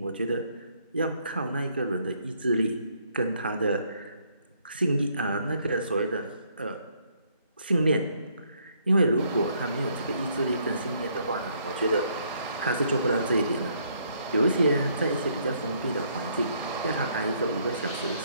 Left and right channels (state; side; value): inverted; both; correlation -0.68